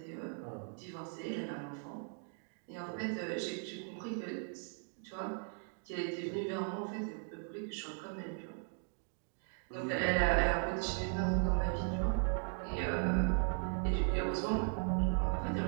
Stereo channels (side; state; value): left; silent; 53 dB below the other